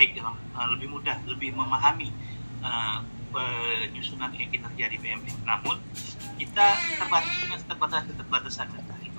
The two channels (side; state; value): both; inverted; correlation -1.00